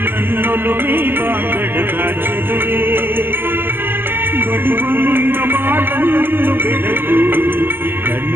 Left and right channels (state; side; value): late; left; 0.097 ms